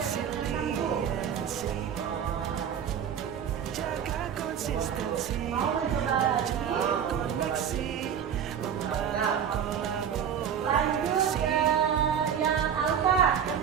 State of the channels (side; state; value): left; quieter; 8.3 dB